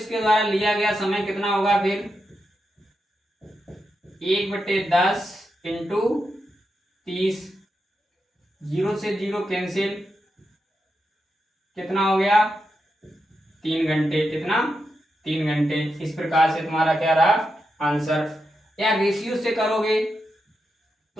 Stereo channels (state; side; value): normal; both; correlation 0.87